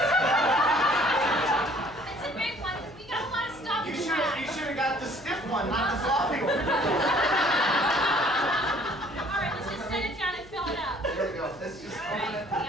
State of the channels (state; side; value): noise; left; hum, 22 dB below the sound